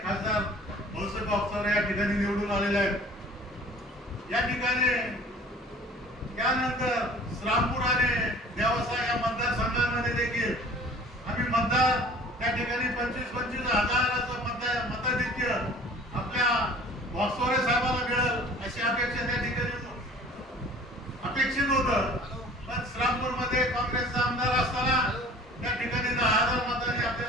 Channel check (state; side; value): normal; both; correlation 0.48